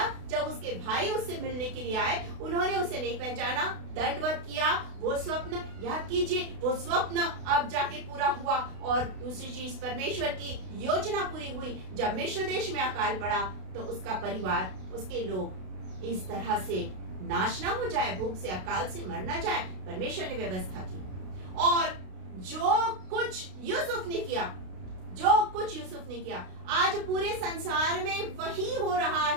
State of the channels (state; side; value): late; left; 32 ms